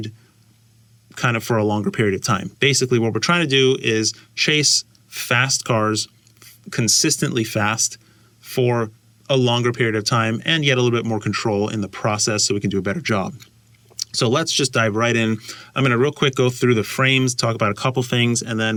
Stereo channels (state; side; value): identical; both; correlation 1.00